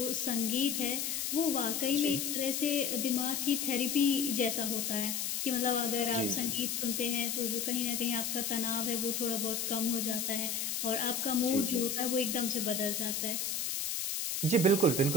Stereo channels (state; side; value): noise; left; hiss, 1 dB below the sound